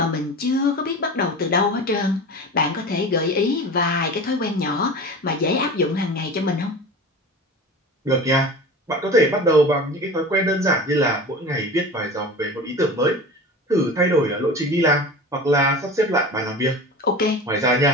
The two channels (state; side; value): normal; both; correlation 0.34